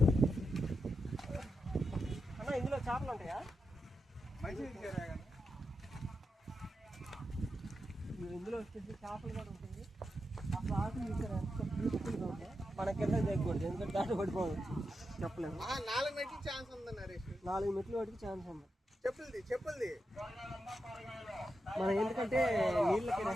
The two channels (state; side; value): normal; both; correlation 0.88